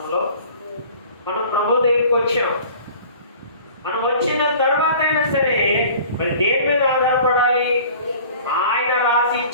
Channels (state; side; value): inverted; both; correlation -0.46